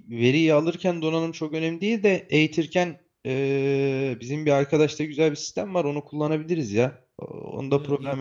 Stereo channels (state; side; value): identical; both; correlation 1.00